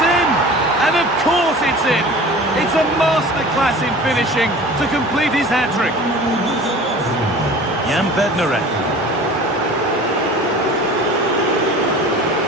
in! And of course it's in! It's a masterclass in finishing to complete his hat-trick. Jan Bednarek.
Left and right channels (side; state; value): both; normal; correlation 0.41